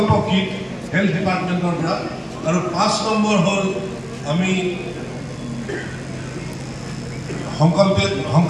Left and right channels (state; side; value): identical; both; correlation 1.00